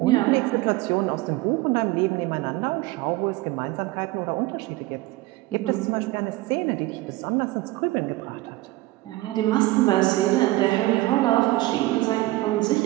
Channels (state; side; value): quieter; left; 18.9 dB